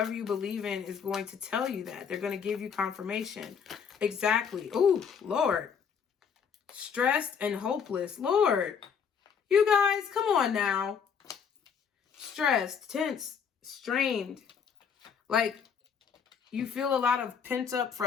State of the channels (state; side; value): quieter; right; 6.9 dB